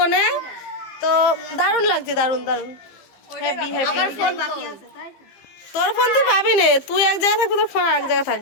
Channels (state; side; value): late; right; 15 ms